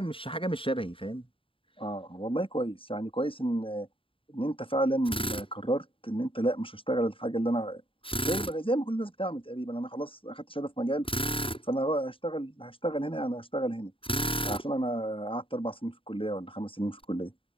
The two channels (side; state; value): right; late; 0.26 ms